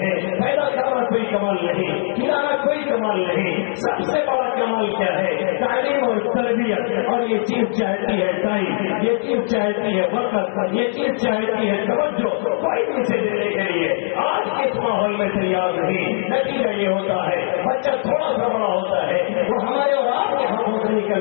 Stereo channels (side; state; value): right; silent; digital silence